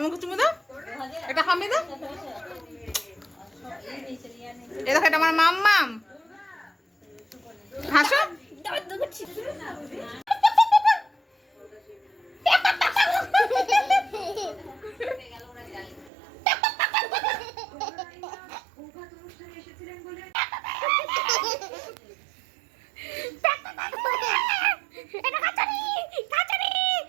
চুমু দাও, এটা খামি দাও। এ দেখো এটা আমার মাম্মাম, হাসো।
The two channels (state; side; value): drops out; left; at 16.1 s